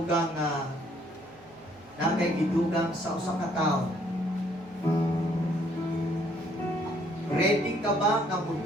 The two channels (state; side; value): noise; right; hum, 28 dB below the sound